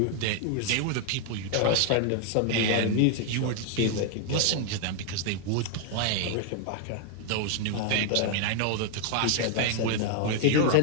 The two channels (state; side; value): different; both; correlation 0.00